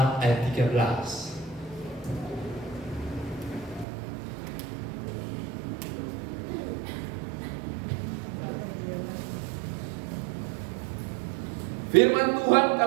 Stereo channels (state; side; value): drops out; left; at 3.9 s